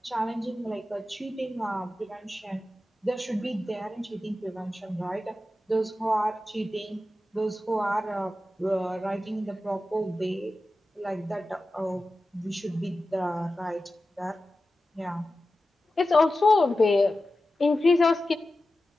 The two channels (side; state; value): both; normal; correlation 0.93